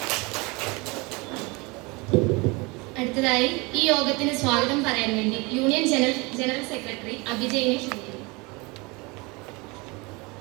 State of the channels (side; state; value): left; quieter; 26.6 dB